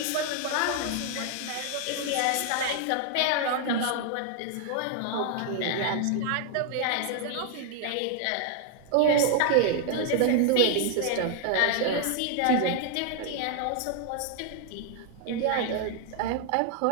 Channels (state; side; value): different; both; correlation 0.00